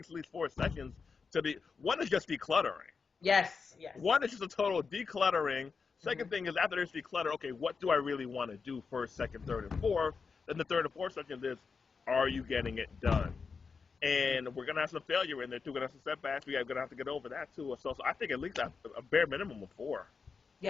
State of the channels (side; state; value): right; quieter; 5.2 dB